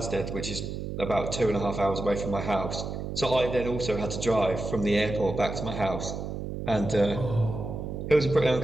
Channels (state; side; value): noise; right; hum, 6 dB below the sound